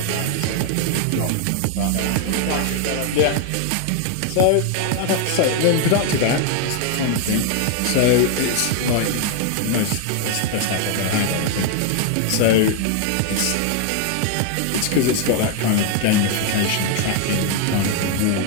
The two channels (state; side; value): different; both; correlation 0.00